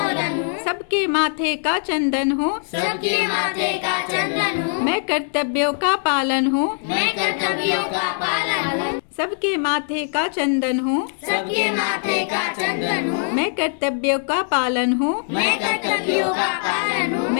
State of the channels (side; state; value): right; silent; digital silence